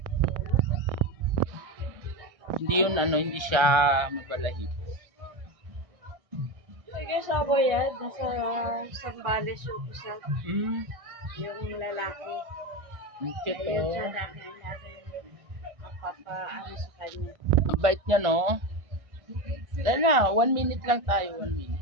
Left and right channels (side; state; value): left; late; 1.6 ms